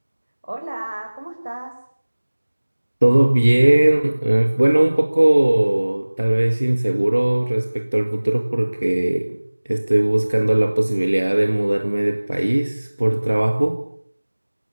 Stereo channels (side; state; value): both; inverted; correlation -1.00